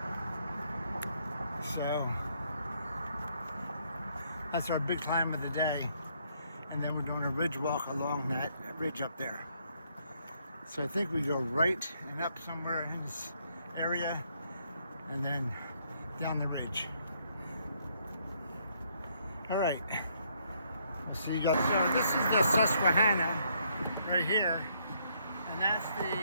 So, that's our big climb of the day. And then we're doing a ridge walk along that ridge up there. So I think we go right and up somewhere in this area and then down the ridge. Alright. We'll see you guys. So this is the Susquehanna right here, and that's the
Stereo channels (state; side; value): inverted; both; correlation -0.71